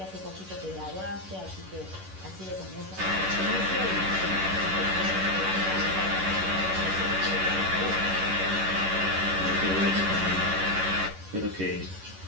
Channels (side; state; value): left; late; 11 ms